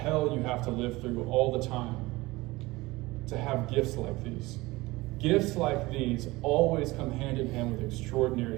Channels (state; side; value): quieter; left; 20.9 dB